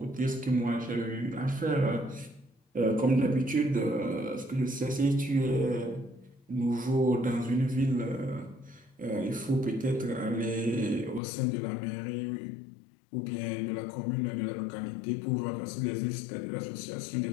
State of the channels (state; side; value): drops out; right; at 11.2 s